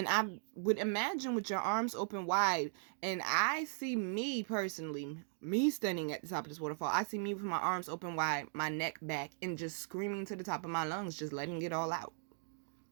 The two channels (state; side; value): silent; left; digital silence